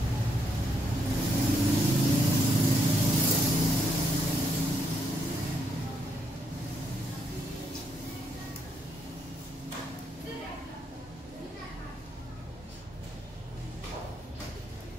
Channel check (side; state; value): both; normal; correlation 0.76